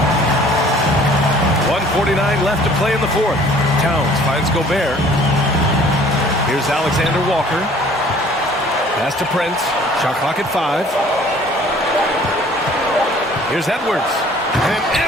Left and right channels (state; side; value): normal; both; correlation 0.53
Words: 1:49 left to play in the 4th. Towns finds Gobert. Here's Alexander Walker. Pass to Prince. Shot clock at 5. Here's Edwards. And